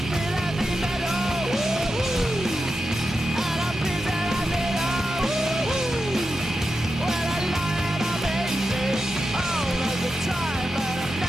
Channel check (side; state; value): both; normal; correlation 0.89